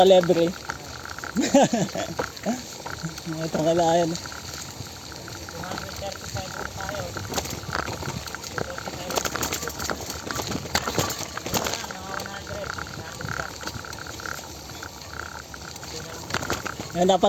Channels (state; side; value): identical; both; correlation 1.00